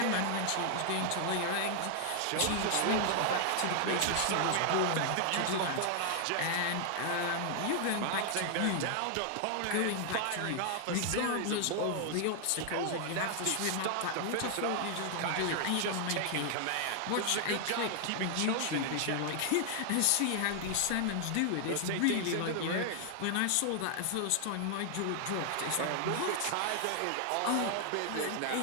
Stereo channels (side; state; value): both; different; correlation 0.00